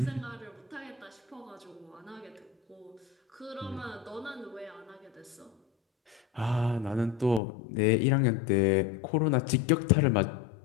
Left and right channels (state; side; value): drops out; right; at 7.4 s